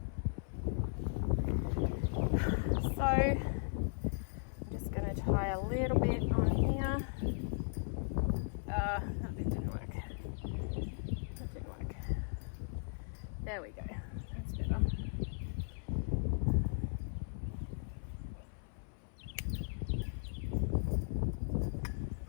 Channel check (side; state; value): right; silent; 53 dB below the other